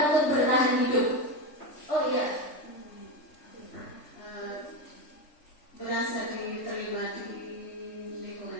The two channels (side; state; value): right; late; 3.6 ms